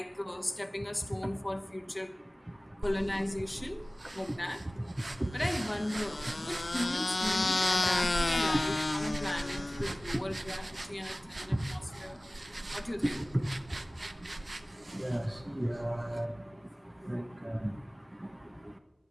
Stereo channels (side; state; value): both; normal; correlation 0.98